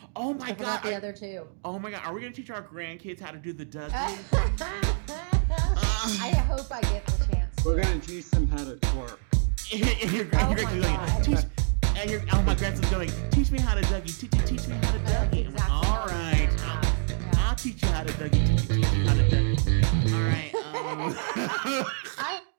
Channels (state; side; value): silent; left; 61 dB below the other